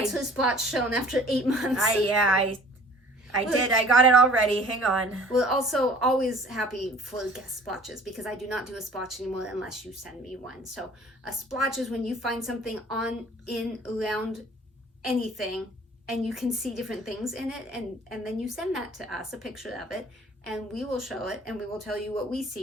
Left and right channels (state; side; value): normal; both; correlation 0.50